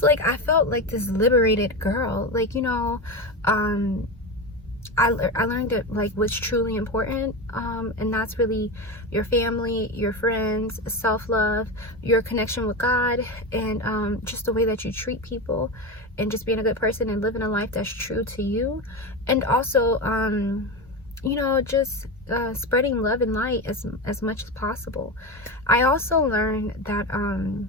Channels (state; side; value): normal; both; correlation 0.19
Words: like, I felt like this liberated girl, like, you know, I learned that, like, what's truly important, and that's really your family, your friends, self-love, your connection with God, and just the way that you treat people, and just being a good person and living a life that's true to you. And also, you know, just spreading love and light as much as possible. I also learned that,